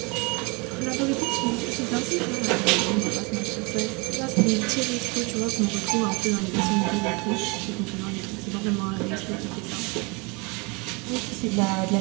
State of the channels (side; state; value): left; quieter; 29.1 dB